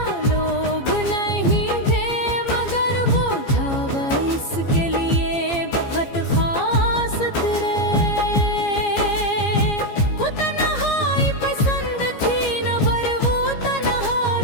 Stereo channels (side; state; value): right; late; 15 ms